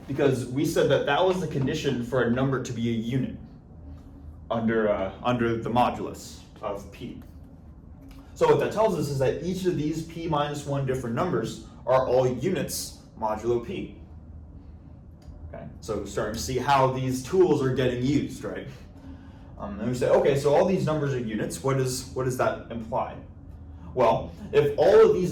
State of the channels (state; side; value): identical; both; correlation 1.00